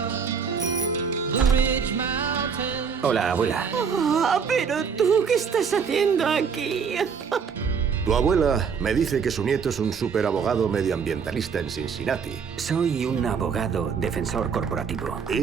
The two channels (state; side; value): quieter; left; 6.3 dB